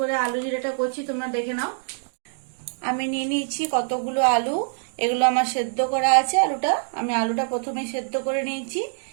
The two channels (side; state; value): left; silent; digital silence